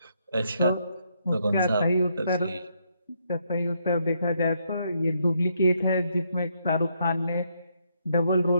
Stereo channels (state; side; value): inverted; both; correlation -0.75